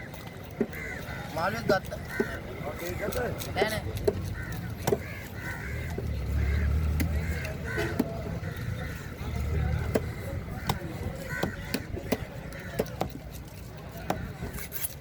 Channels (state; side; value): identical; both; correlation 1.00